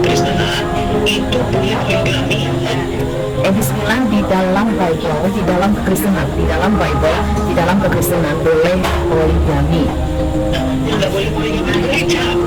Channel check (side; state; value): both; identical; correlation 1.00